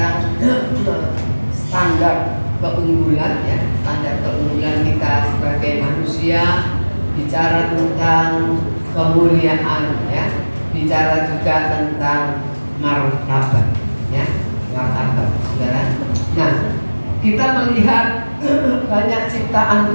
standar keunggulan ya, standar keunggulan kita sebagai manusia, bicara tentang kemuliaan ya, bicara juga tentang martabat ya, martabat saudara. Nah, kita melihat banyak ciptaan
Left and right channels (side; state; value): both; inverted; correlation -1.00